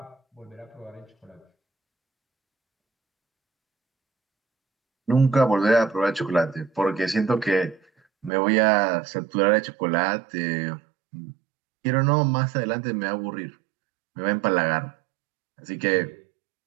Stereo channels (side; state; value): left; drops out; at 8.3 s